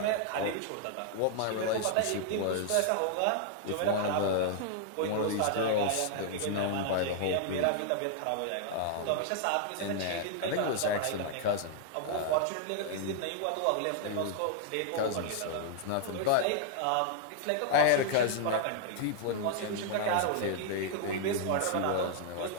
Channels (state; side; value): different; both; correlation 0.00